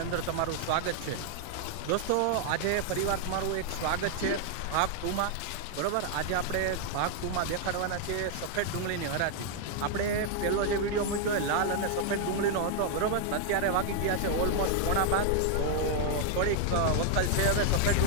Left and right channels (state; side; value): different; both; correlation 0.00